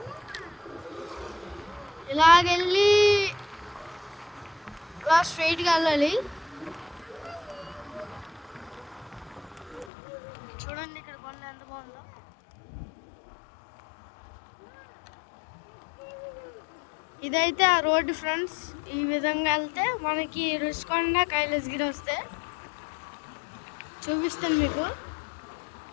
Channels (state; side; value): drops out; right; at 9.9 s